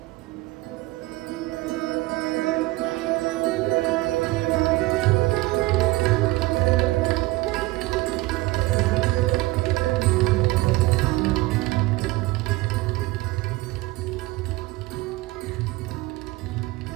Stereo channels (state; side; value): quieter; left; 20.0 dB